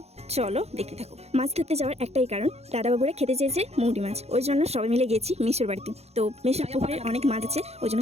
চলো দেখতে থাকো। মাছ ধরতে যাওয়ার একটাই কারণ, দাদা বাবুরা খেতে চেয়েছে মৌরি মাছ, ওই জন্য সবাই মিলে গেছি মেশোর বাড়িতে। তো মেশোর পুকুরে অনেক মাছ আছে, ওই জন্য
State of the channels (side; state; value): left; late; 0.31 ms